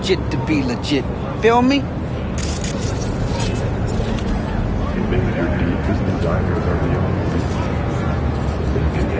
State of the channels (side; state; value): both; identical; correlation 1.00